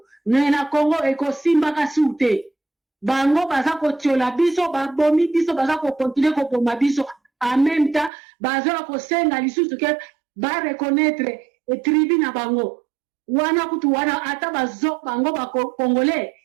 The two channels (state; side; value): drops out; left; at 8.1 s